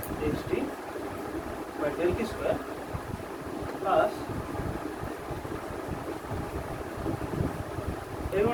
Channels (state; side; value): identical; both; correlation 1.00